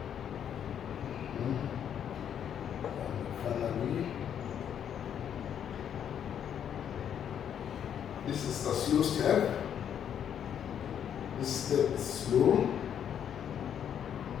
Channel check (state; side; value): quieter; right; 9.0 dB